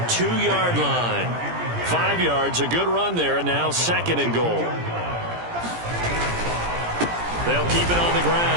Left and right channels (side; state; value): left; late; 17 ms